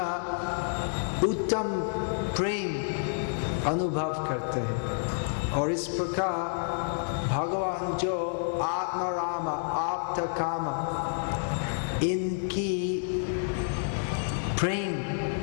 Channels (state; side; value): silent; right; digital silence